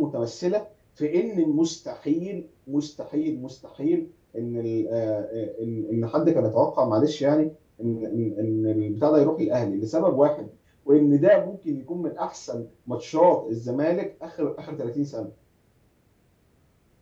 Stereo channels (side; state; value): both; identical; correlation 1.00